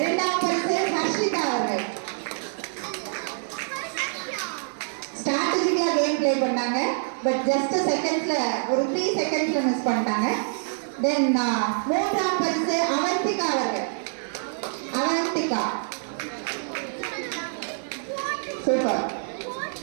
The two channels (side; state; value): left; silent; 59 dB below the other